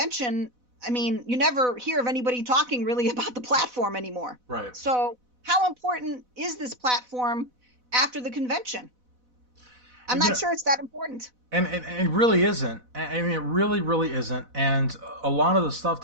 you never hear of anybody talking really about the platform anymore. Right. So how important is this platform after the convention? I'm not sure it's that important. And it really isn't. It really, really isn't. And a lot of the stuff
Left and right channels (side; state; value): left; late; 4.0 ms